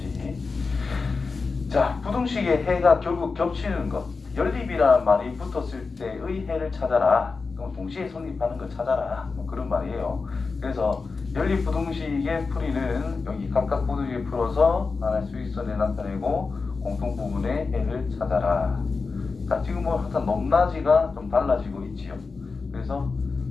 자, 부등식의 해가 결국 겹치는 것. 연립이라는 말이 붙었을 때의 해를 찾아라. 그럼 동시에 성립하는 걸 찾아라. 뭐 그런 말이에요. 그래서 연립 부등식의 풀이는 여기 각각 부등식을 풀어서 하나의 수직선에 나타내고 공통 부분의 해를 찾아라. 자, 지금 뭐 항상 높낮이가 좀 달라지고 있지요. 그래서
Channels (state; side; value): quieter; right; 4.4 dB